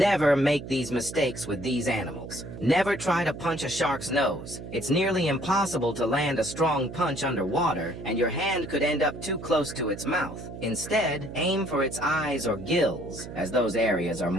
make these mistakes with these animals. Never try to punch a shark's nose. It's nearly impossible to land a strong punch underwater, and your hand could end up too close to its mouth. Instead, aim for its eyes or gills, as those areas are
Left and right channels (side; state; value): right; noise; hum, 11 dB below the sound